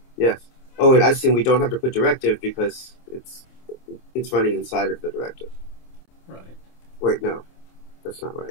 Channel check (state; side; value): late; right; 26 ms